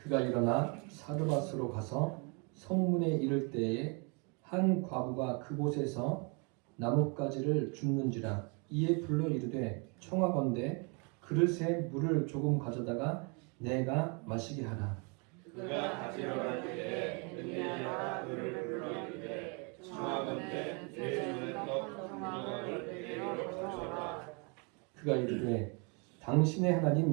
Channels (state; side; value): quieter; left; 33.7 dB